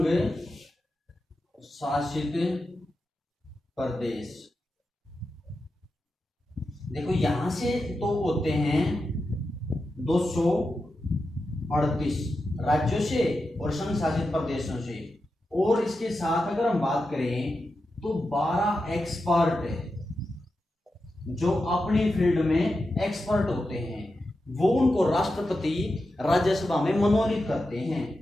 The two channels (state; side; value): normal; both; correlation 0.90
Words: शासित प्रदेश। देखो यहां से तो होते हैं 238 राज्यों से और संघ शासित प्रदेशों से, और इसके साथ अगर हम बात करें तो 12 एक्सपर्ट जो अपनी फील्ड में एक्सपर्ट होते हैं, वो उनको राष्ट्रपति राज्यसभा में मनोनीत करते